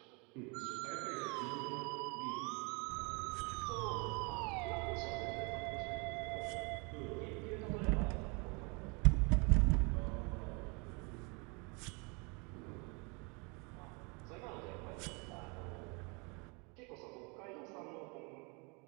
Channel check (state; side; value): quieter; left; 31.2 dB